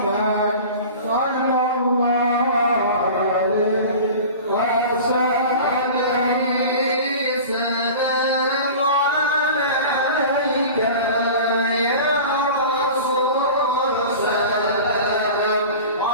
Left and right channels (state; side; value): inverted; both; correlation -0.37